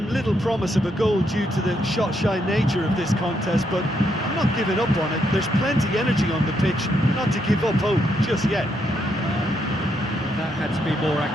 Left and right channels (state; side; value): normal; both; correlation 0.77